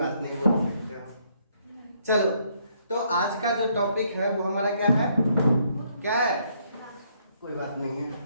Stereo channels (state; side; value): inverted; both; correlation -0.70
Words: नहीं, बोल सकते हो। चलो, तो आज का जो टॉपिक है वो हमारा क्या है? क्या है? कोई बात नहीं है।